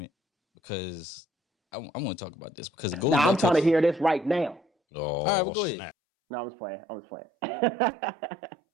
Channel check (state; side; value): drops out; left; at 6.0 s